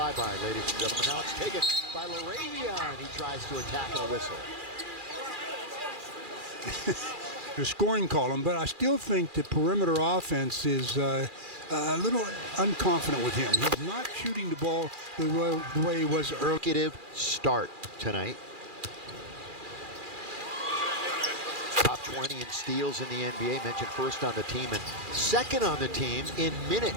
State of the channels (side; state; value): left; late; 2.4 ms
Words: ladies and gentlemen. Now it's taken by Laravion. He tries to attack a whistle. The scoring column, but I still think the perimeter offense is a little unconfident with him. He's not shooting the ball the way he was earlier. Consecutive start tonight. Top 20 in steals in the NBA, mentioned first on the team and second on the team in